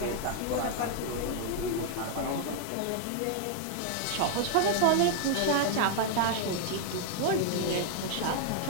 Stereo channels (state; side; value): different; both; correlation 0.00